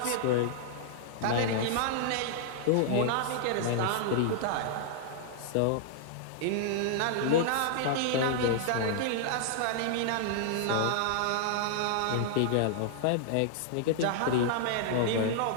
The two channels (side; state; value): both; different; correlation -0.01